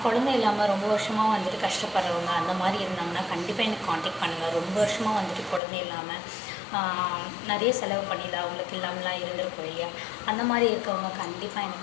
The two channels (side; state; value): right; drops out; at 5.6 s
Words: குழந்தை இல்லாமல் ரொம்ப வருஷமாக வந்துட்டு கஷ்டப்படுறவங்க அந்த மாதிரி இருந்தாங்கன்னா கண்டிப்பாக எனக்கு காண்டாக்ட் பண்ணுங்கள். ரொம்ப வருஷமாக வந்துட்டு குழந்தை இல்லாமல் நிறைய செலவு பண்ணிடல, அவங்களுக்கு இல்லாமலாம் இருந்திருக்கும் இல்லையா, அந்த மாதிரி இருக்கவங்க கண்டிப்பாக